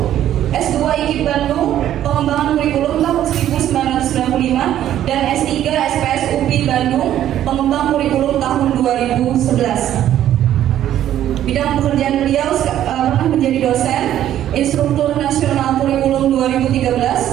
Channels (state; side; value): quieter; left; 11.7 dB